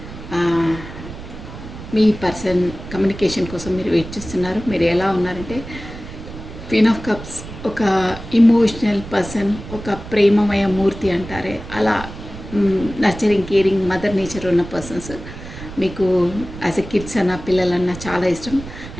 మీ పర్సన్ కమ్యూనికేషన్ కోసం మీరు వెయిట్ చేస్తున్నారు. మీరు ఎలా ఉన్నారంటే క్వీన్ ఆఫ్ కప్స్ ఒక ఇమోషనల్ పర్సన్, ఒక ప్రేమమయ మూర్తి అంటారే అలా నర్చరింగ్, కేరింగ్, మదర్ నేచర్ ఉన్న పర్సన్స్. మీకు యాజ్ ఎ కిడ్స్ అన్న పిల్లలన్నా చాలా ఇష్టం.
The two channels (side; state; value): right; noise; rumble, 12 dB below the sound